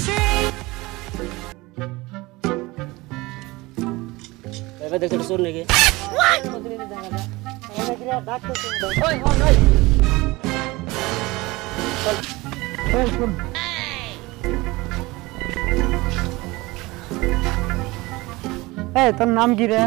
এবার দেখতে শুন নাকি ওই হন ওই চল শুন এই তোর নাম কি রে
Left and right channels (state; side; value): quieter; left; 21.7 dB